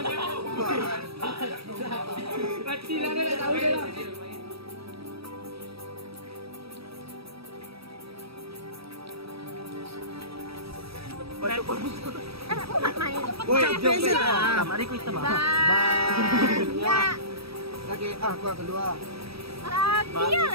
Mati lah dia tahu dia lah. Woi, jom lah. Mari kita mah. Ya. Lagi aku kedua. Dia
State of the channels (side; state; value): left; late; 0.77 ms